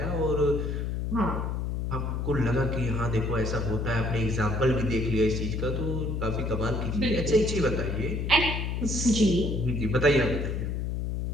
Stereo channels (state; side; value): noise; left; hum, 2 dB below the sound